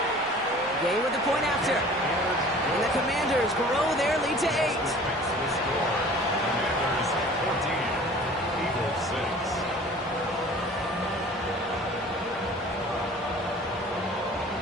Gay with the point after. And the Commanders grow their lead to 8. Commanders 14, Eagles 6.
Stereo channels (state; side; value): normal; both; correlation 0.46